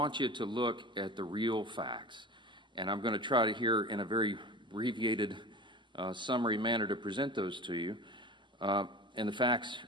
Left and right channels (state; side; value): normal; both; correlation 0.35